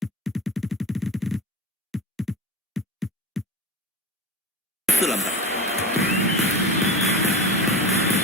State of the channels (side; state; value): both; normal; correlation 0.28